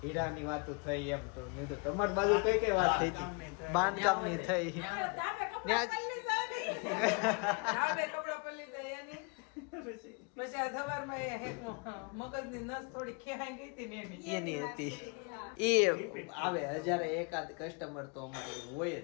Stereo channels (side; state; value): right; quieter; 33.6 dB